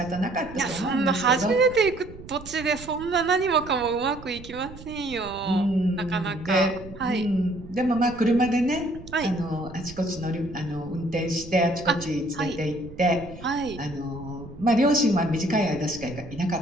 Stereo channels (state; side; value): noise; right; rumble, 16 dB below the sound